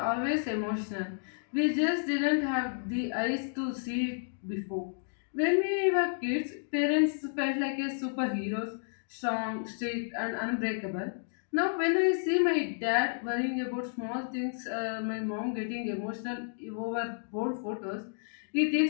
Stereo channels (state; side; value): silent; right; digital silence